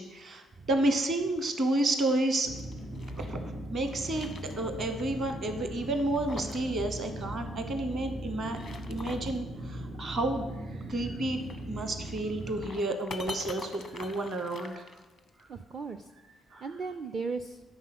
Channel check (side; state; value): both; normal; correlation 0.71